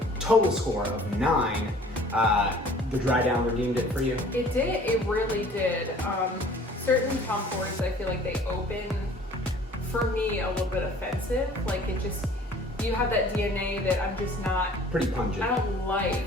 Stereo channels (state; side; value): normal; both; correlation 0.51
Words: total score of 9. The dry down redeemed it for you? It did, it really did. Certain Tom Fords, I feel like they open, for me, a little bit offensive. Like it just, you have that DNA that I'm just not, pretty pungent. I don't like